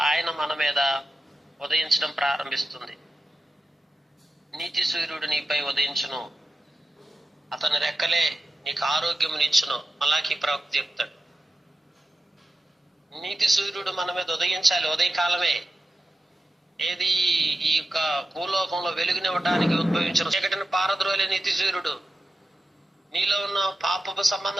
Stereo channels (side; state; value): both; normal; correlation 0.92